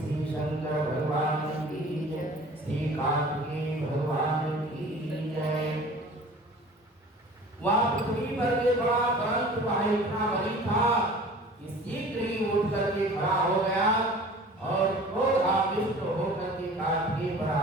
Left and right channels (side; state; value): both; normal; correlation 0.44